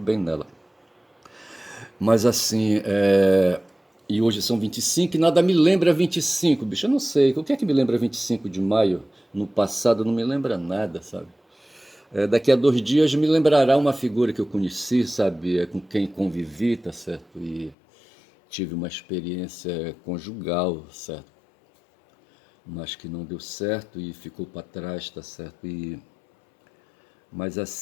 nela. Mas assim, e hoje são 25 e nada me lembra 25, bicho. Eu não sei. O que é que me lembra 25 de maio? No passado não me lembra nada, sabe? Daqui a 2 dias me lembrará uma figura que eu conheci, sabe? Com quem convivi, tá certo? E tive uma experiência conjugal, certo? Mas que não deu certo e ficou para trás, tá certo? Mas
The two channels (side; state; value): right; drops out; at 17.8 s